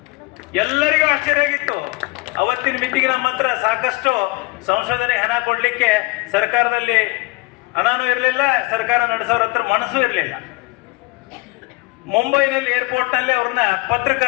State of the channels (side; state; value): right; quieter; 24.4 dB